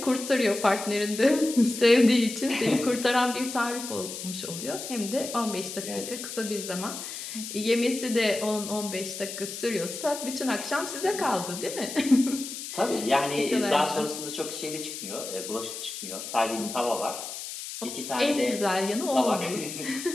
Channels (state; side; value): noise; left; hiss, 8 dB below the sound